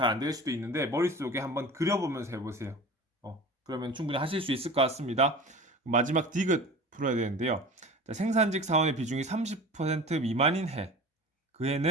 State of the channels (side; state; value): both; normal; correlation 0.37